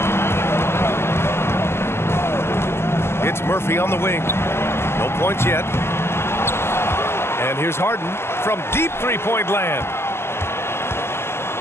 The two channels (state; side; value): late; right; 0.12 ms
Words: It's Murphy on the wing. No points yet. And here's Harden from deep 3-point land.